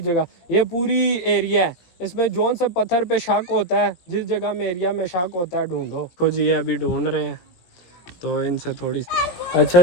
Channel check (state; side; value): late; right; 17 ms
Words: ये पूरी एरिया है, इसमें जोन से पत्थर पे शक होता है, जिस जगह में एरिया में शक होता है ढूंढो। कुछ ये अभी ढूंढ रहे हैं तो इनसे थोड़ी।